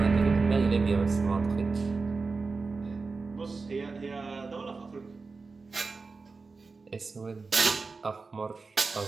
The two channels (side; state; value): left; quieter; 4.2 dB